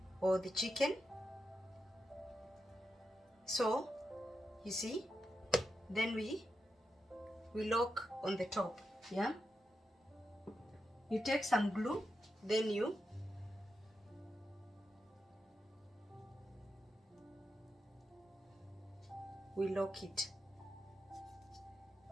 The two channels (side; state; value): both; normal; correlation 0.87